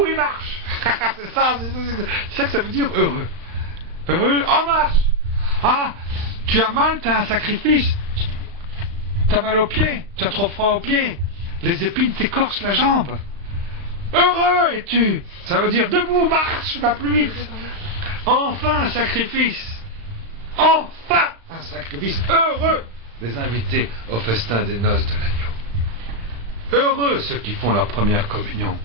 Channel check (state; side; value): late; left; 35 ms